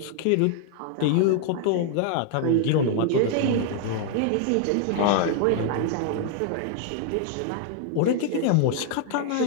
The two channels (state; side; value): different; both; correlation 0.00